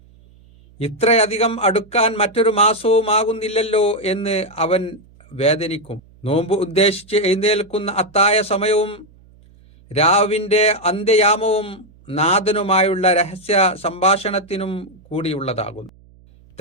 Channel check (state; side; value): noise; right; hum, 27 dB below the sound